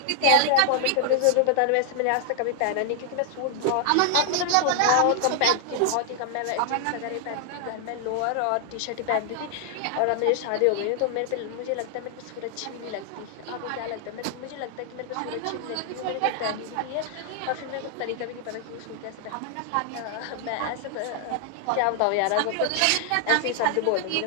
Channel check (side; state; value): both; different; correlation 0.00